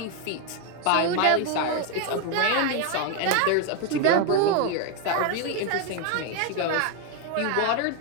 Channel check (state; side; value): different; both; correlation 0.01